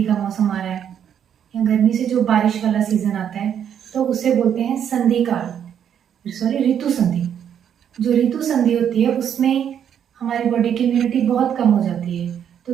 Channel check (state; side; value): quieter; left; 8.9 dB